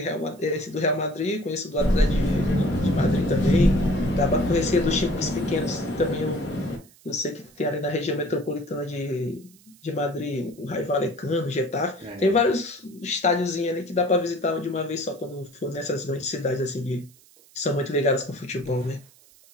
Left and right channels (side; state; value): right; noise; hiss, 27 dB below the sound